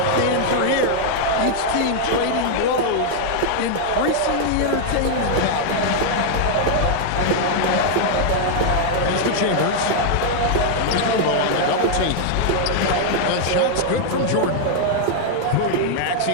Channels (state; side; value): different; both; correlation -0.01